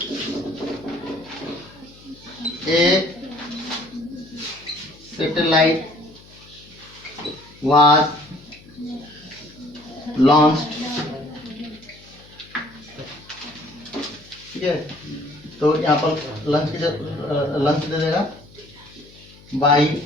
a satellite was launched. ठीक है, तो यहाँ पर लंच दे देगा बाई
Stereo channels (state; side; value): noise; left; hum, 23 dB below the sound